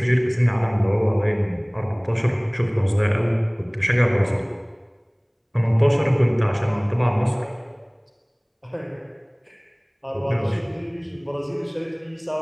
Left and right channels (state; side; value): identical; both; correlation 1.00